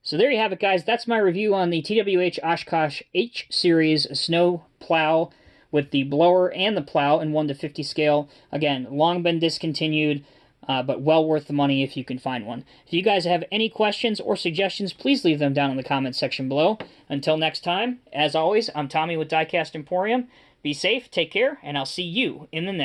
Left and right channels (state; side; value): identical; both; correlation 1.00